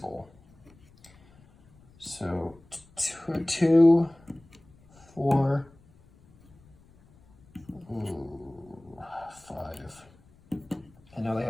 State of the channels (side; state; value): left; noise; rumble, 28 dB below the sound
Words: So 2, 4, 5. And now they